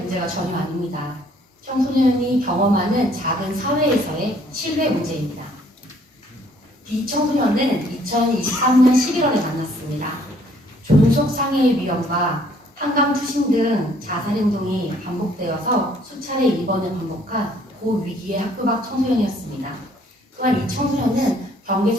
전혀 아닙니다. 청소년이 경험하는 작은 사회에서의 신뢰 문제입니다. B 청소년은 2023년 11월에 만났습니다. 존속 상해의 위험과 한강 투신 등 자살 행동이 반복되어서 수차례 입원을 반복한 고위기의 학교 밖 청소년이었습니다. 또한 이 청소년은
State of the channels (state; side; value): normal; both; correlation 0.62